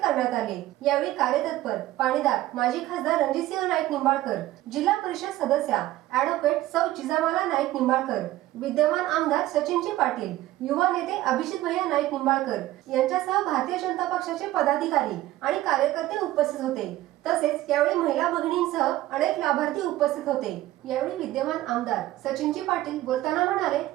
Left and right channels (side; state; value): left; quieter; 15.7 dB